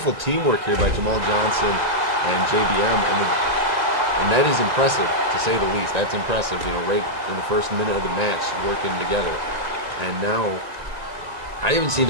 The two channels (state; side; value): late; left; 1.9 ms